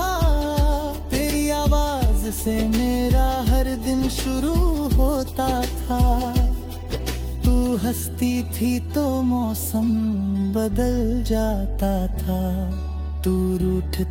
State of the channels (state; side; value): identical; both; correlation 1.00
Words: तेरी आवाज से मेरा हर दिन शुरू होता था। तू हंसती थी तो मौसम बदल जाता था, तू